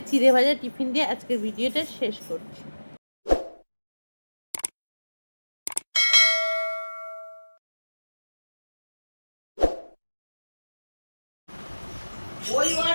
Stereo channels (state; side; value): inverted; both; correlation -1.00